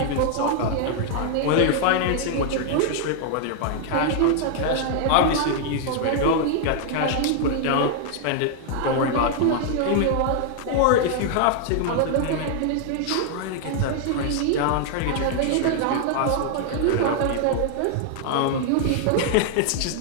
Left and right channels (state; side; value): different; both; correlation 0.00